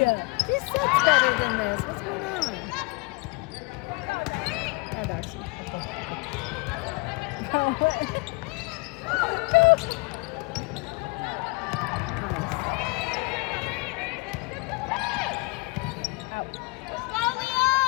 She sucks better than this. What's going on? Yeah, Darcy. Nice.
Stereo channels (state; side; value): quieter; right; 26.4 dB